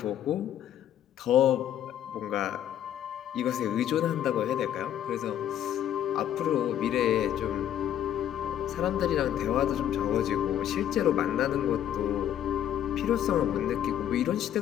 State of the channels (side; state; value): right; quieter; 10.8 dB